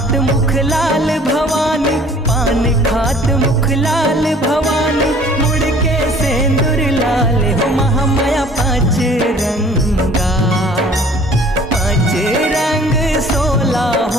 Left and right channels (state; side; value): normal; both; correlation 0.53